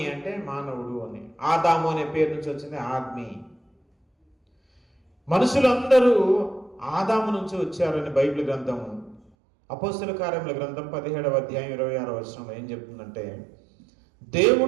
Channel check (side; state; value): left; drops out; at 9.3 s